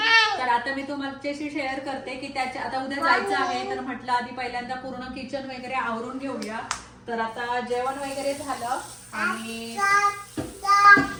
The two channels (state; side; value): identical; both; correlation 1.00